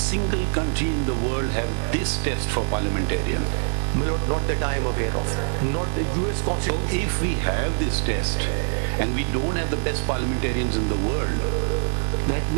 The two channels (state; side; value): silent; left; 60 dB below the other